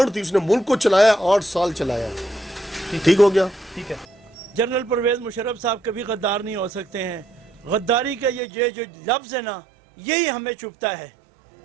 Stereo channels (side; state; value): left; drops out; at 8.4 s